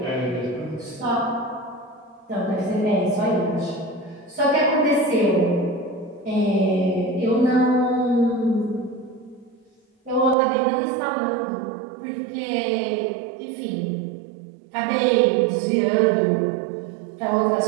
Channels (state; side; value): drops out; left; at 10.4 s